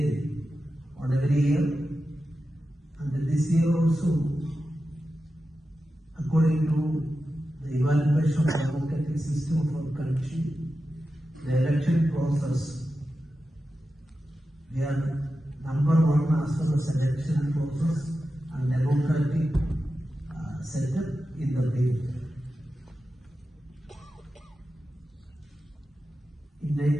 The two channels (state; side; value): normal; both; correlation 0.92